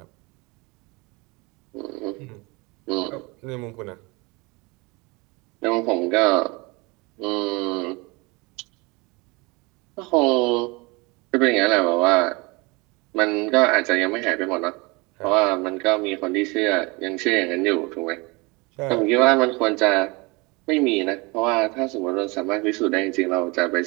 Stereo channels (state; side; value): quieter; left; 26.6 dB